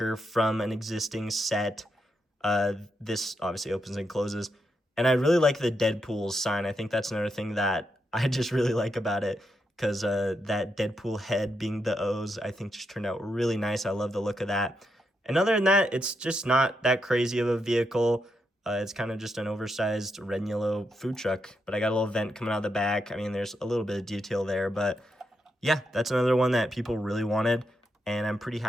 from an existing set. This obviously opens and closes. And I really like the Deadpool sign. I think that's another thing that I just really like about it because that Deadpool head being the O's, I think just turned out really nice. I love the look of that. And other than that, it's just not that crazy of a vehicle. It's kind of just an oversized red and yellow food truck. But I got a little vent coming out of the back. I mean, there's a little bit of detail there. But yeah, that's another one that people really wanted. And I'm pretty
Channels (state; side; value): normal; both; correlation 0.82